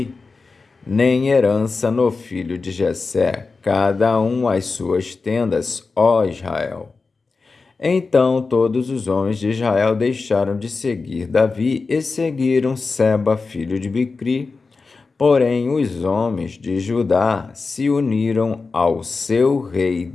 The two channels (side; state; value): right; quieter; 4.2 dB